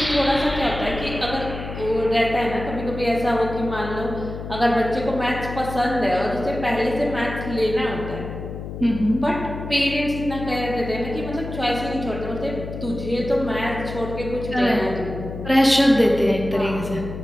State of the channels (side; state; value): left; noise; hum, 8 dB below the sound